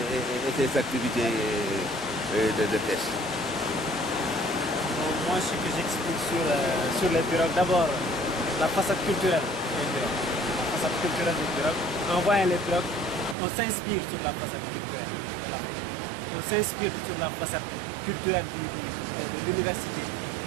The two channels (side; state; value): left; drops out; at 13.4 s